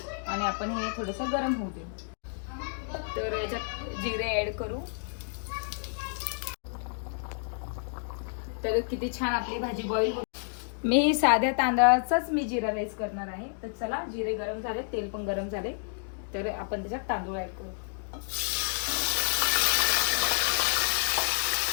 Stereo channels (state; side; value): silent; right; digital silence